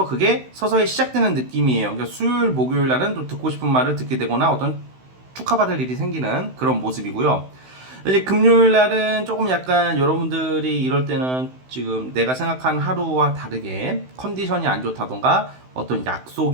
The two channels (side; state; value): left; late; 16 ms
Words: 그게 서서히 시작되는 느낌이에요. 그러니까 수요일, 목요일 날은 또 듣고 싶은 말을 듣게 되거나 어떤 축하받을 일이 생기는 그런 모습이고요. 이제 금요일 날은 조금 약간 여러분들이 이럴 때는 지금 내가 생각한 하루와 다르게 컨디션이 안 좋다던가 어떤